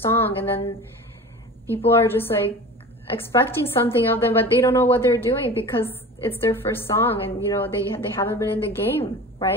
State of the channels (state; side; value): normal; both; correlation 0.36